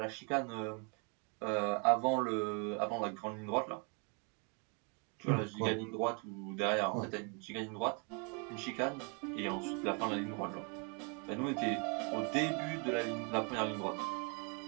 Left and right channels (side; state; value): left; quieter; 34.1 dB